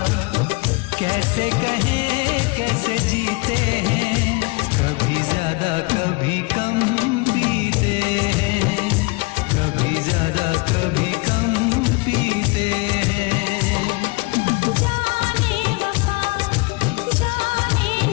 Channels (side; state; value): right; quieter; 26.3 dB